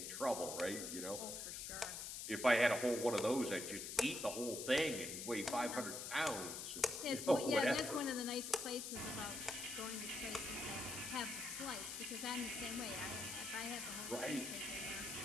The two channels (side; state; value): left; noise; hiss, 5 dB below the sound